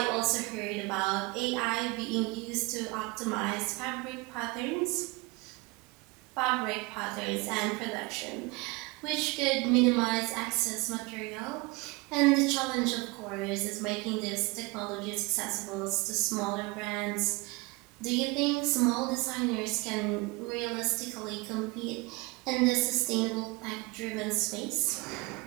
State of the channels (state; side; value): quieter; left; 25.0 dB